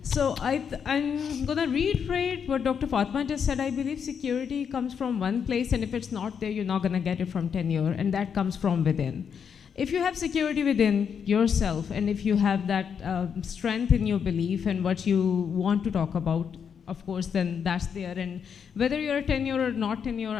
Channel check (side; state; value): right; quieter; 7.1 dB